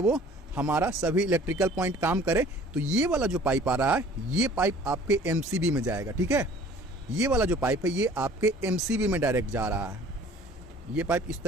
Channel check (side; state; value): both; normal; correlation 0.50